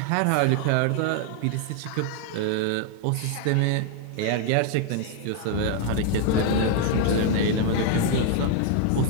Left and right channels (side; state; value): both; different; correlation 0.00